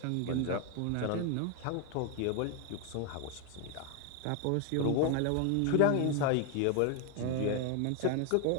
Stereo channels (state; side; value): different; both; correlation 0.01